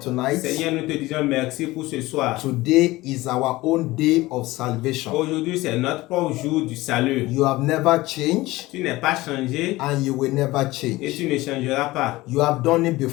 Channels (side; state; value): right; quieter; 19.1 dB